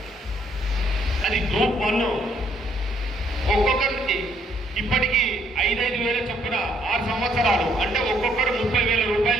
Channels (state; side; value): normal; both; correlation 0.68